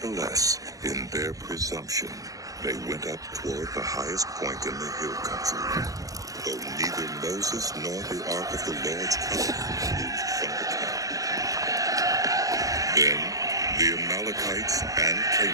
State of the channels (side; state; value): left; late; 0.17 ms